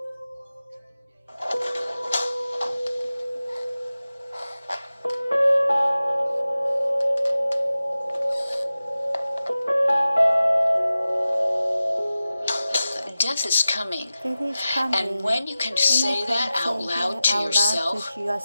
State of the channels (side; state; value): both; inverted; correlation -0.94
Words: death is coming. Death is coming. And when you can say that out loud to yourself,